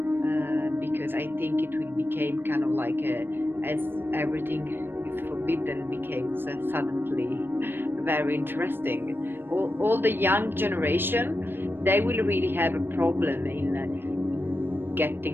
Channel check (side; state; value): left; late; 0.10 ms